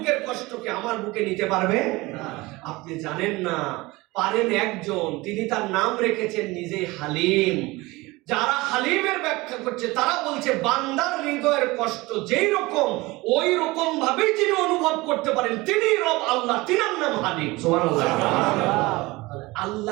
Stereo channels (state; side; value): quieter; left; 21.7 dB